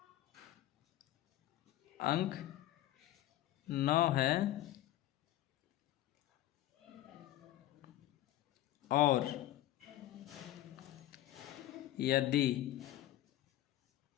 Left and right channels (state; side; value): quieter; right; 14.1 dB